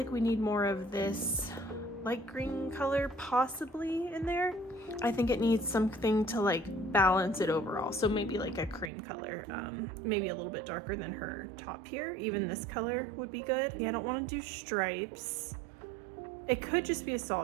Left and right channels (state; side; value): drops out; left; at 8.9 s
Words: we need more of this light green color possibly in there. I think it needs something to like balance it overall. So maybe like a cream color, maybe a little bit darker than her top here. Even this color would be good. Yeah, I don't want to do stripes. It could just be a